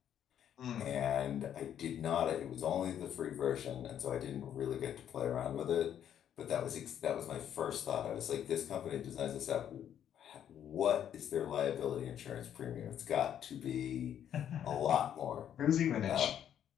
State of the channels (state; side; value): quieter; right; 9.8 dB